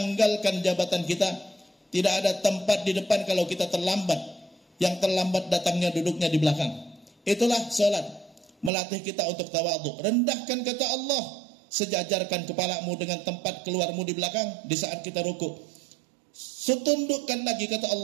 jabatan kita. Tidak ada tempat di depan kalau kita terlambat. Yang terlambat datangnya duduknya di belakang. Itulah salat, melatih kita untuk tawadhu. Rendahkan kata Allah, sejajarkan kepalamu dengan tempat keluarmu di belakang di saat kita rukuk. Setundukkan lagi kata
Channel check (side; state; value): left; drops out; at 8.7 s